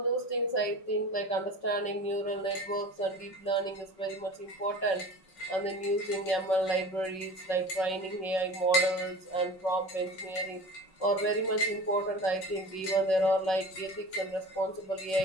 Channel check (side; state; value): right; late; 5.3 ms